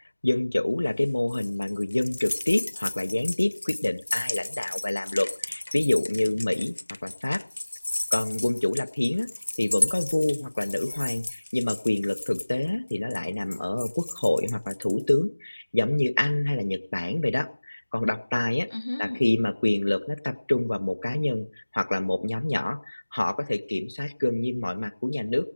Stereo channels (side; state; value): both; inverted; correlation -1.00